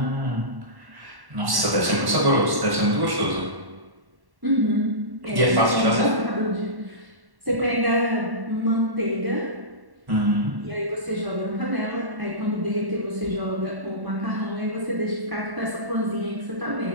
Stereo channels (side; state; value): left; late; 1.1 ms